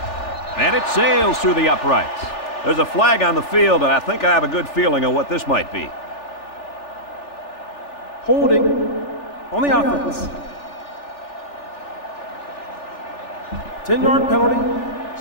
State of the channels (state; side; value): late; right; 3.4 ms